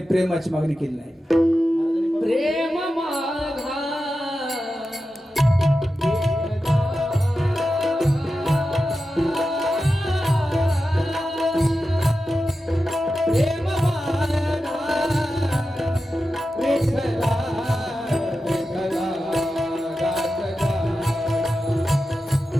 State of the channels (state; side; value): normal; both; correlation 0.91